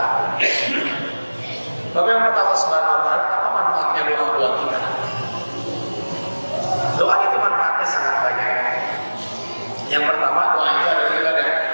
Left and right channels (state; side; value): inverted; both; correlation -1.00